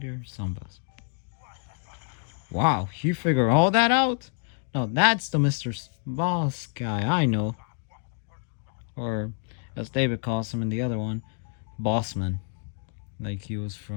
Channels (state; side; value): silent; right; 60 dB below the other